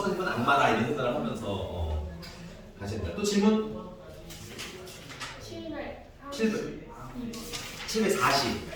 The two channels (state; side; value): identical; both; correlation 1.00